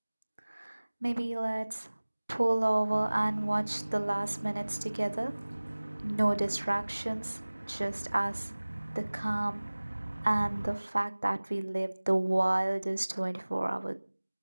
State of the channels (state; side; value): inverted; both; correlation -1.00